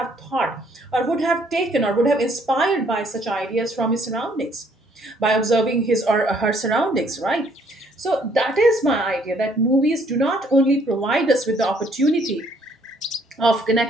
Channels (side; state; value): both; normal; correlation 0.64